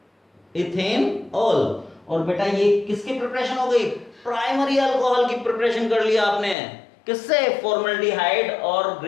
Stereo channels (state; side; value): drops out; right; at 6.6 s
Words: इथेनॉल। और बेटा ये किसकी प्रिपरेशन हो गई, प्राइमरी अल्कोहल की प्रिपरेशन कर लिया आपने, किससे, फॉर्मल्डिहाइड और